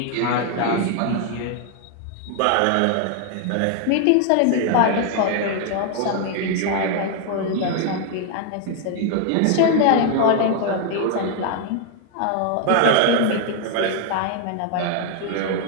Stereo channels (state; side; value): different; both; correlation 0.00